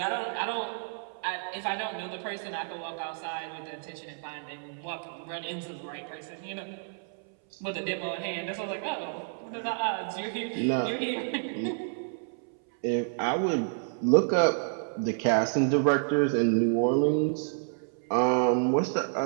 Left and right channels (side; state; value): left; silent; 58 dB below the other